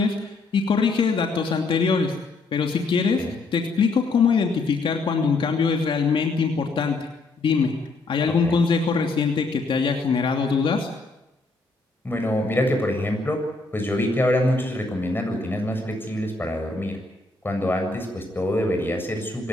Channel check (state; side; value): quieter; right; 3.5 dB